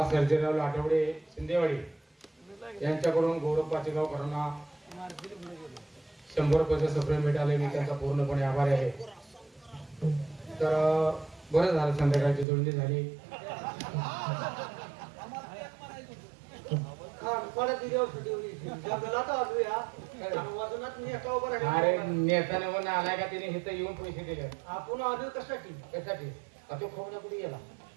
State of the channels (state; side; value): drops out; left; at 12.5 s